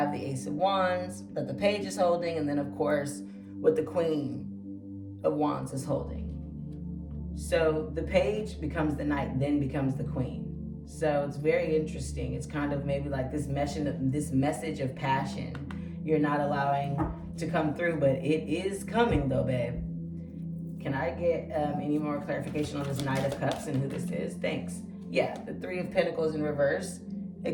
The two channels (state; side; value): identical; both; correlation 1.00